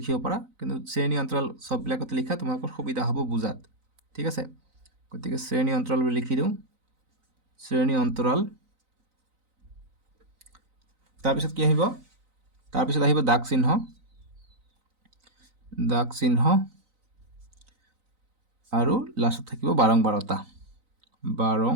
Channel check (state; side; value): late; left; 3.9 ms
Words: পাৰা কিন্তু শ্ৰেণী অন্তৰাল সববিলাকতে লিখা তোমালোকৰ সুবিধা হ'ব বুজাত ঠিক আছে গতিকে শ্ৰেণী অন্তৰাল বুলি লিখি দিওঁ শ্ৰেণী অন্তৰাল তাৰপিছত কি আহিব তাৰপিছত আহিব দাগ চিহ্ন আৰু লাষ্টত থাকিব বাৰংবাৰতা